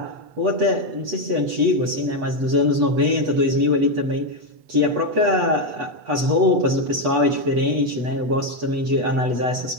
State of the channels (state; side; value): late; left; 8.1 ms